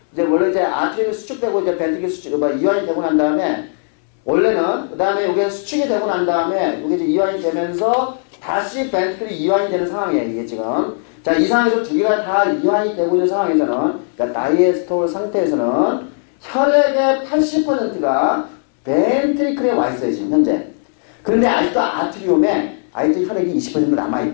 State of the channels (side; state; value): right; silent; 67 dB below the other